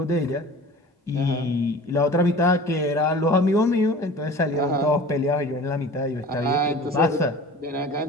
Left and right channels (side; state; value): both; normal; correlation 0.41